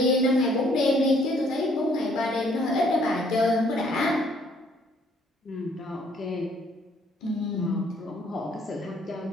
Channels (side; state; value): both; normal; correlation 0.63